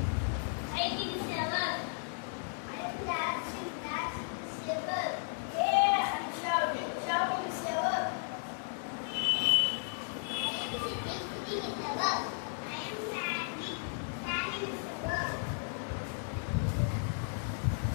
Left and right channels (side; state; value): right; silent; digital silence